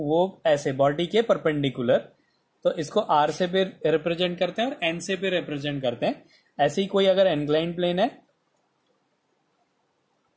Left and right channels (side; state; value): both; identical; correlation 1.00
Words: ऐसे बॉडी के परपेंडिकुलर, तो इसको R से भी रिप्रेजेंट करते हैं और N से भी रिप्रेजेंट करते हैं। ऐसे ही कोई अगर इंक्लाइंड प्लेन है,